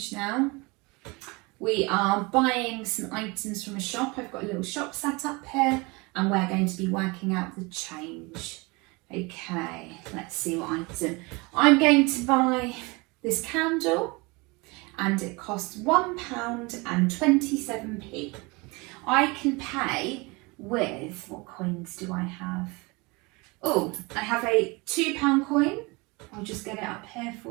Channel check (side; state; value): left; quieter; 26.2 dB